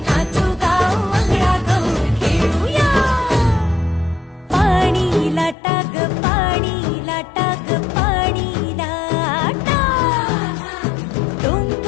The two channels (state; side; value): drops out; right; at 5.6 s